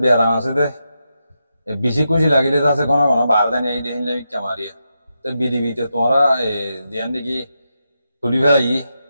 beram ase de বেশি খুশি লাগিলে তো আছে কোনো কোনো বারদানি এই দেখিলে মিথ্যা মারিয়া তো বিডিবিতে তোমরা দিয়ান দেখি তুলি ফেলাই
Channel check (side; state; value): both; inverted; correlation -0.86